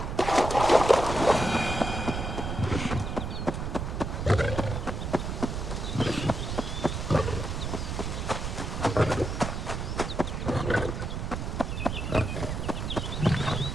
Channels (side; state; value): right; noise; rumble, 3 dB below the sound